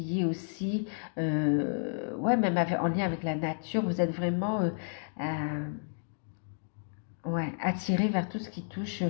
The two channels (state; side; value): silent; right; digital silence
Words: est aussi, ouais, même en lien avec la nature. Vous êtes vraiment ouais, attiré vers tout ce qui touche